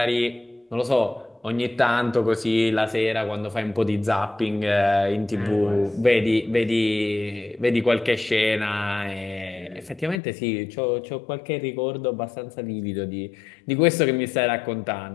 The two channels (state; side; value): drops out; right; at 10.2 s